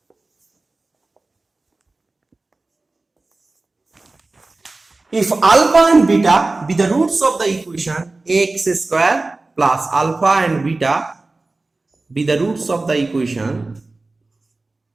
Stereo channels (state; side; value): quieter; left; 3.3 dB